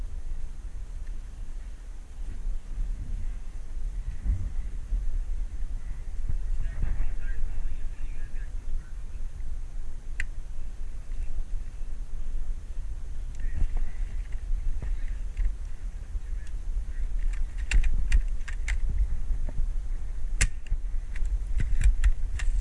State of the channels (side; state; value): both; identical; correlation 1.00